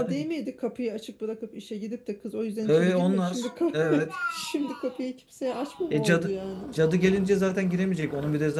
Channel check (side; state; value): both; identical; correlation 1.00